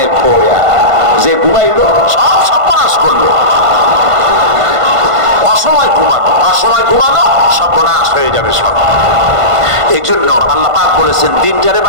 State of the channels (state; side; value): late; left; 1.5 ms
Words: খোয়া, যে ঘুমাইলো সব সর্বনাশ করলো। অসময় ঘুমানো সর্বনাশ হয়ে যাবে সব। এই জন্য আল্লাহ পাক বলেছেন, দিনটারে